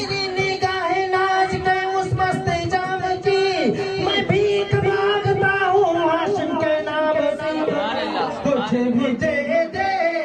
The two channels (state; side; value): identical; both; correlation 1.00